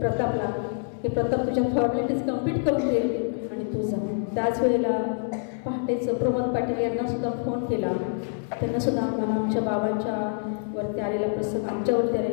की प्रताप तुझ्या फॉर्मॅलिटीज कंप्लीट करून दे आणि तू जा. त्याच वेळेला पहाटेचं प्रमोद पाटील यांना सुद्धा फोन केला. त्यांना सुद्धा आम्हाला आमच्या बाबांच्या वरती आलेला प्रसंग आमच्यावरती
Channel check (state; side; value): silent; right; digital silence